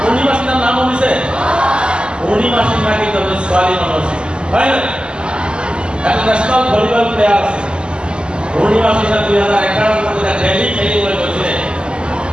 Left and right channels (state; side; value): late; left; 0.049 ms